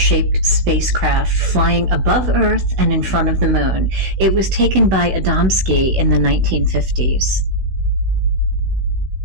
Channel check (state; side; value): late; left; 16 ms